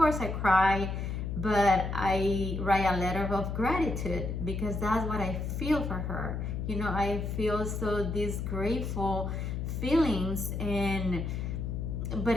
I cry, but I write a letter of gratitude, because that's what I feel for her. I feel so these grateful feelings,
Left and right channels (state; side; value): noise; left; hum, 3 dB below the sound